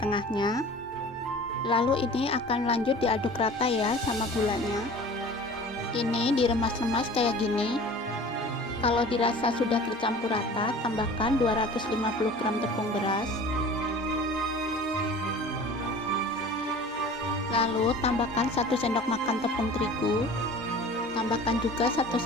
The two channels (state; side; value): normal; both; correlation 0.42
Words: tengahnya. Lalu ini akan lanjut diaduk rata ya sama gulanya. Ini diremas-remas kayak gini. Kalau dirasa sudah tercampur rata, tambahkan 250 gram tepung beras. Lalu tambahkan 1 sendok makan tepung terigu. Tambahkan juga 1